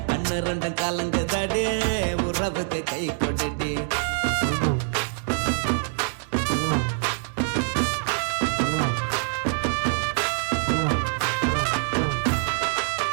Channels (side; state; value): left; silent; digital silence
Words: கண்ணு ரெண்டும் கலங்குதடி உறவுக்கு கை கொடுடி